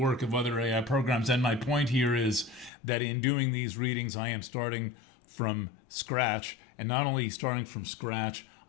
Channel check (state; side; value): drops out; right; at 2.7 s